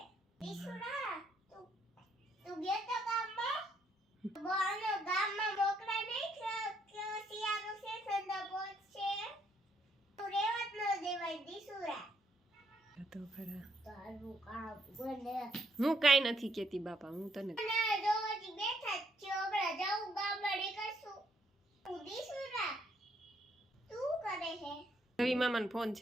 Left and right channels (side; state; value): both; normal; correlation 0.72